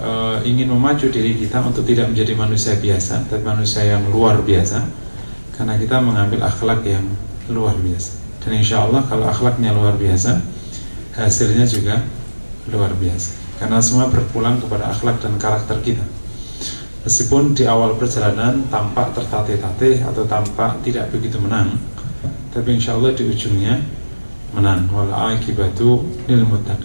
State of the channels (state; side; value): inverted; both; correlation -1.00